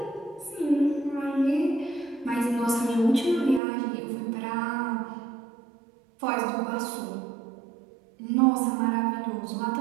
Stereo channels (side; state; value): left; drops out; at 3.6 s